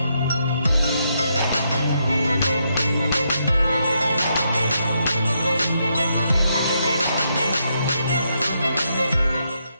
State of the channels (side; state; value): both; inverted; correlation -0.79